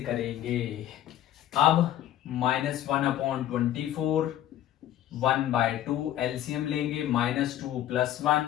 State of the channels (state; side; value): quieter; right; 12.3 dB